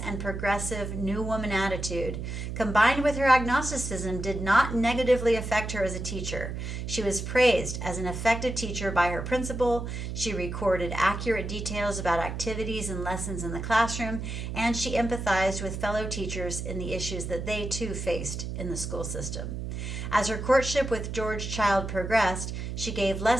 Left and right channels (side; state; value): right; noise; hum, 5 dB below the sound